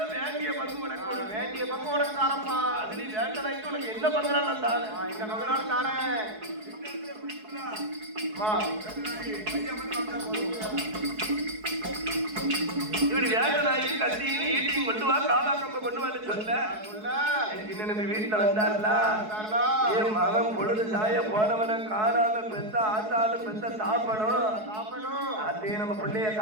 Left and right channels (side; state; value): left; late; 4.7 ms